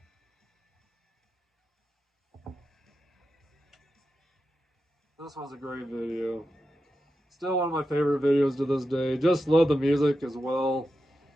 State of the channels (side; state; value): both; normal; correlation 0.90